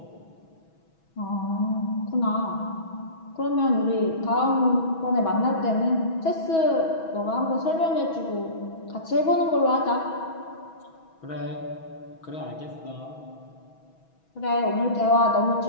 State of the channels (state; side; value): late; right; 6.2 ms